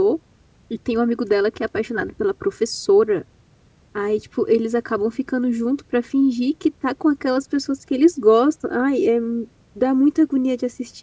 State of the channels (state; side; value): identical; both; correlation 1.00